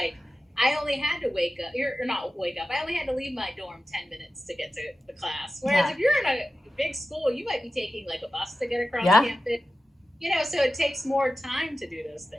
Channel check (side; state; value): both; normal; correlation 0.93